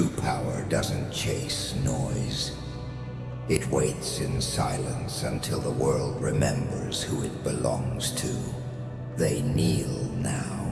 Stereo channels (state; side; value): identical; both; correlation 1.00